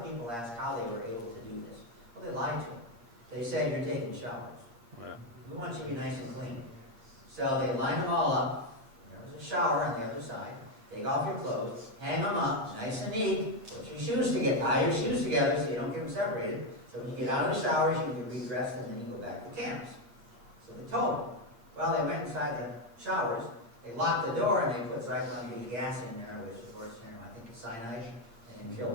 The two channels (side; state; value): left; late; 8.6 ms